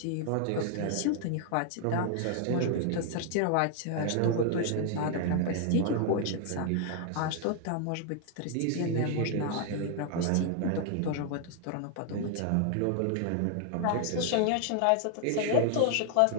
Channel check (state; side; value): different; both; correlation 0.00